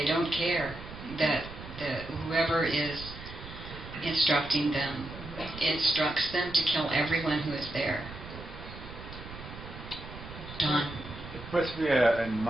don't care, that whoever is instructing them instructs them to kill everyone who is there. Don? It puts me in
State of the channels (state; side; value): noise; right; rumble, 13 dB below the sound